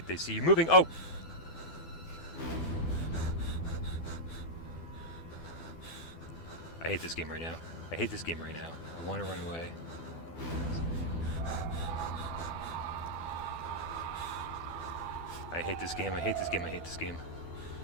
they see you moving. Oh! I hate this game right now. I hate this game right now. I want to run away. I hate this game. I hate this game. I hate this game.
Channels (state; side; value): late; right; 12 ms